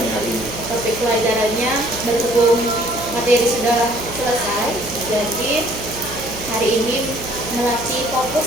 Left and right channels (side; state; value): right; noise; hum, 13 dB below the sound